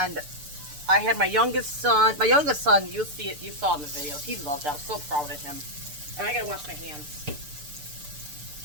I had my youngest son, you'll see it, you saw in the videos, he loved it, I was so proud of him. And I gotta wash my hands.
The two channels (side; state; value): left; late; 6.8 ms